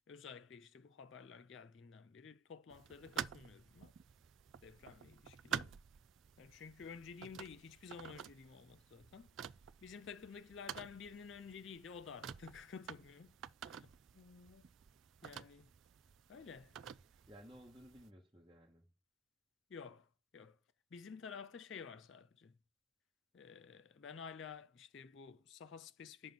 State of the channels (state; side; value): normal; both; correlation 0.37